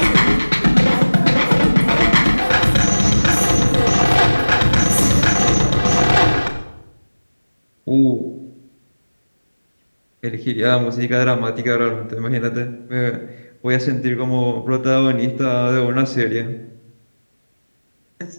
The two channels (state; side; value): inverted; both; correlation -1.00